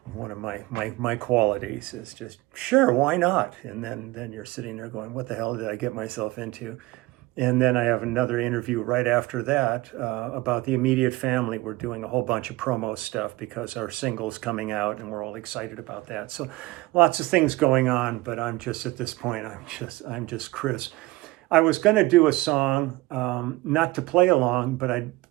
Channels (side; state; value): left; quieter; 20.2 dB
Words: One of my qualities is just, sure, why not? And then you're sitting there going, what the hell did I get myself into? And then I have another interview right after that about the immediate family. We're doing a whole bunch of promo stuff because our single's coming out, and we're all excited about that. So lots of things going on, but I'm just at this point, I'm just Chris. I was going to do a song, not to play along, but I'd